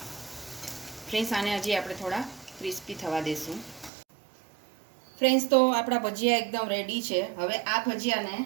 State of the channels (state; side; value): drops out; left; at 3.9 s